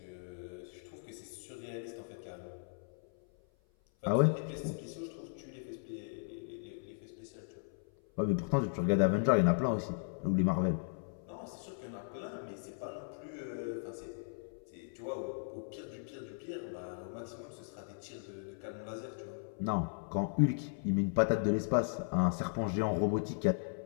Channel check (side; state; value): right; silent; 53 dB below the other